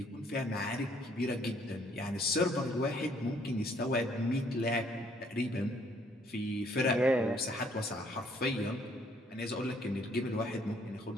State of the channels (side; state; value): both; normal; correlation 0.65